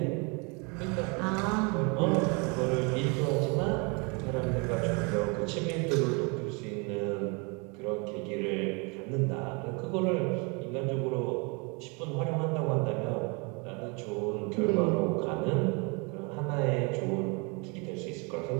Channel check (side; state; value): left; quieter; 31.5 dB